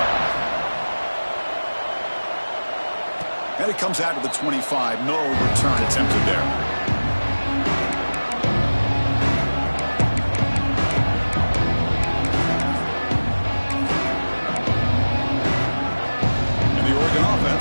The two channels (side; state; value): both; inverted; correlation -1.00